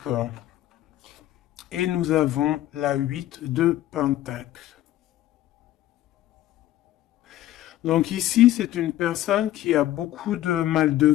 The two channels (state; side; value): quieter; right; 14.1 dB